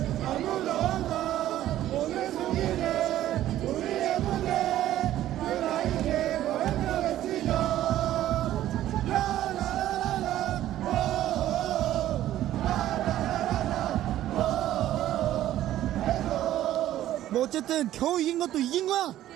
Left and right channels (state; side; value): quieter; left; 13.2 dB